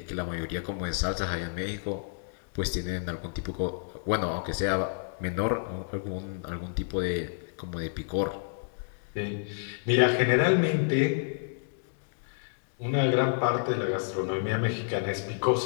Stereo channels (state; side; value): silent; right; digital silence